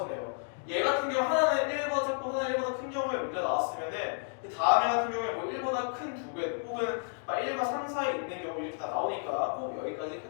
내요. 얘 같은 경우 하나는 1보다 작고 하나는 1보다 큰 경우에 문제가 나왔으면은 다음 애 같은 경우에 뭐 1보다 큰 두 배 혹은 1과 3 사이에 있는 경우 이렇게 다 나오니까 꼭 여기까지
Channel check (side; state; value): right; silent; 57 dB below the other